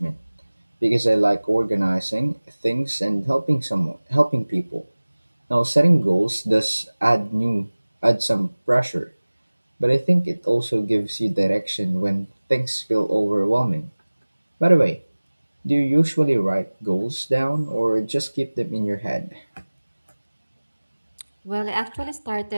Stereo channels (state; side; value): inverted; both; correlation -1.00